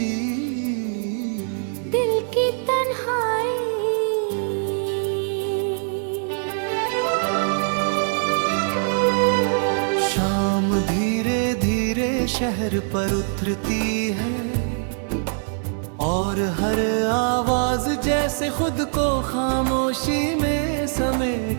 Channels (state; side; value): silent; left; digital silence